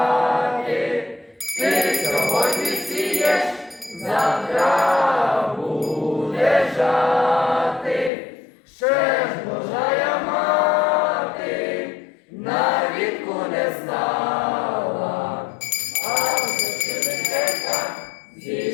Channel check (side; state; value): right; drops out; at 8.1 s